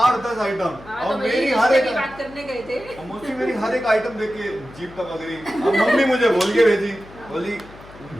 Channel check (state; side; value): noise; left; hum, 20 dB below the sound